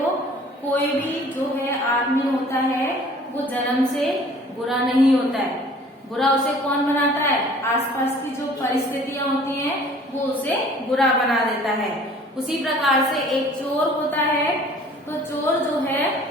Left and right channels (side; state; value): both; normal; correlation 0.51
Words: कोई भी जो है आदमी होता है वो जन्म से बुरा नहीं होता है। बुरा उसे कौन बनाता है? आसपास की जो परिस्थितियां होती हैं वो उसे बुरा बना देता है। उसी प्रकार से एक चोर होता है। तो चोर जो है,